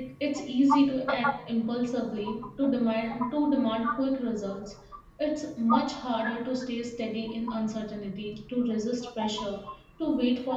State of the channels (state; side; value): identical; both; correlation 1.00